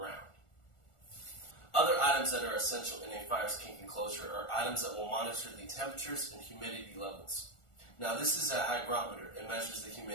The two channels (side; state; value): right; late; 1.4 ms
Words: Other items that are essential in a Fire Skink enclosure are items that will monitor the temperatures and humidity levels. Now this is a hygrometer. It measures the